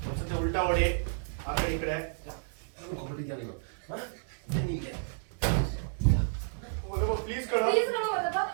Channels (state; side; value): silent; left; digital silence